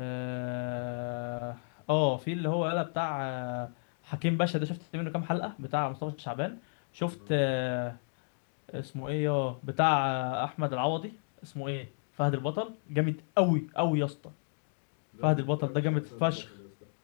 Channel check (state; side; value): silent; right; digital silence